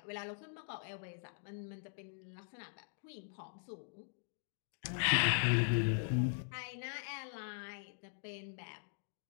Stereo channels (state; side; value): silent; right; digital silence